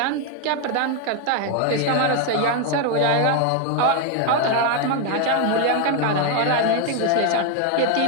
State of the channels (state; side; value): different; both; correlation 0.01